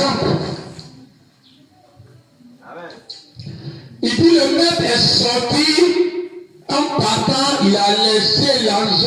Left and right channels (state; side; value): identical; both; correlation 1.00